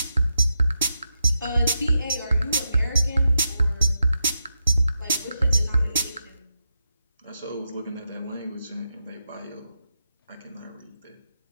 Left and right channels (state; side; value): inverted; both; correlation -0.85